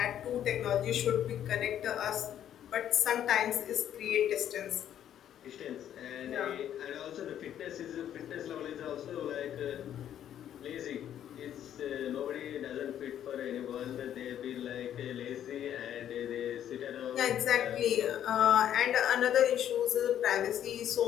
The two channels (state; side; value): quieter; right; 10.5 dB